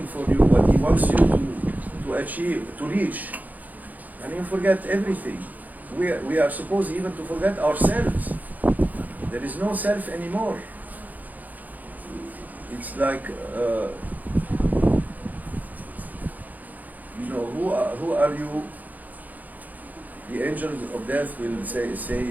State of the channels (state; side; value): late; left; 0.081 ms